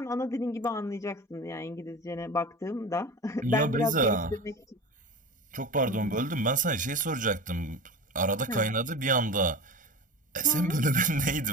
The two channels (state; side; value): normal; both; correlation 0.32